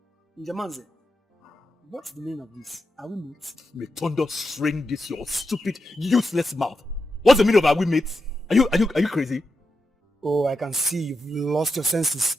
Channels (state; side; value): normal; both; correlation 0.86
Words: Njamanze, what's the meaning of this? Are we mates? May thunder string this your stupid, useless mouth. What's the meaning of are we mates? Are you crazy? Oh, I can see you've lost your senses.